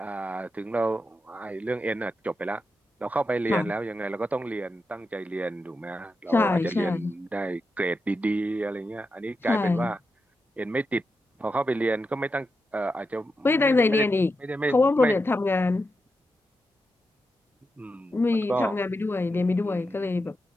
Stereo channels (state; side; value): normal; both; correlation 0.87